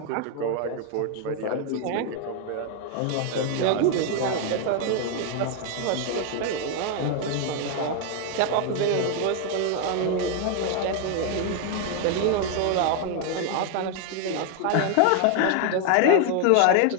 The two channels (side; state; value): both; different; correlation 0.01